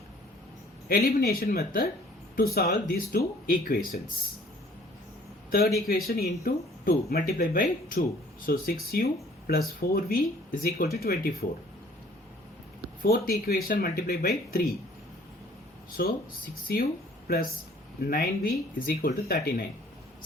elimination method to solve these two equations. Third equation into 2 multiply by 2. So 6u plus 4v is equal to 24. Fourth equation multiply by 3. So 6u plus 9v is equal to 39.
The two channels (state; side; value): normal; both; correlation 0.56